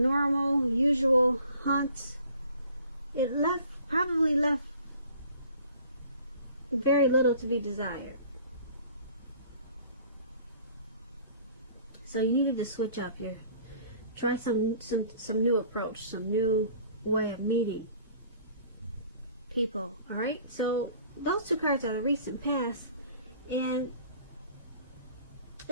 usual hunts, it probably left very little to be desired. So you needed to switch up try some new approach, some new way of meeting people. All right, so those two cards are the recent past, and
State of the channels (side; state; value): both; inverted; correlation -0.52